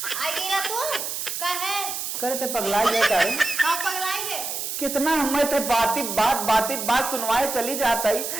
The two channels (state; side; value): noise; right; hiss, 4 dB below the sound